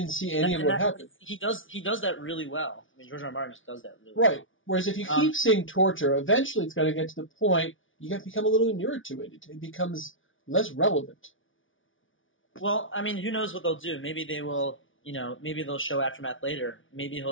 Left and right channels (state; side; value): late; right; 0.57 ms